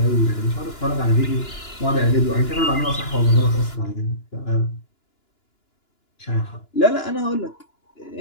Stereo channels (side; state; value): right; late; 2.9 ms